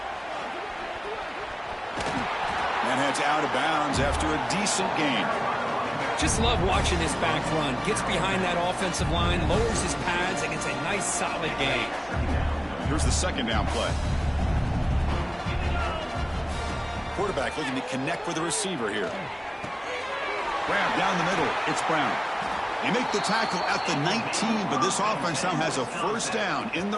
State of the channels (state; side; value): identical; both; correlation 1.00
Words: And heads out of bounds after a decent gain. Just love watching this back run. Gets behind that offensive line, lowers his pads, and gets a nice solid gain. Here's the second down play. Quarterback looking to connect with the receiver here. Grab down the middle. It's Brown. They make the tackle at the 19, but this offense now has a first down in